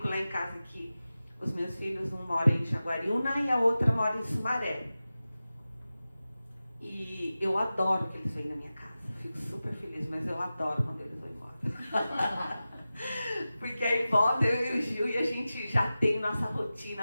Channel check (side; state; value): both; inverted; correlation -0.95